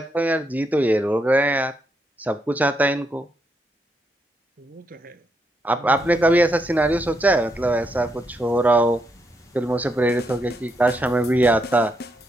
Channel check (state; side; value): normal; both; correlation 0.79